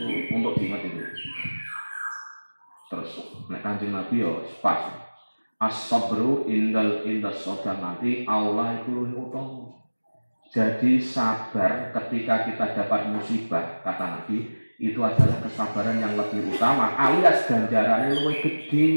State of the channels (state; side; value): inverted; both; correlation -1.00